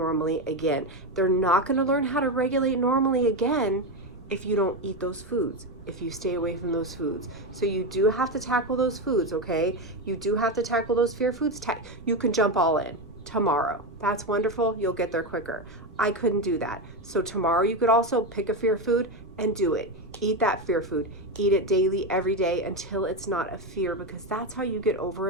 again. They're not going to learn how to regulate normally again if you don't eat those foods, if you stay away from those foods. So you do have to tackle those foods, okay? You do have to tackle those fear foods. You can jump all in tomorrow. That's wonderful. You'll get there quicker. I couldn't do that. So tomorrow you could also pick a fear food and do it. Eat that fear food. Eat it daily, every day, until it's not a fear, because that's how you get over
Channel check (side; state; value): right; noise; rumble, 20 dB below the sound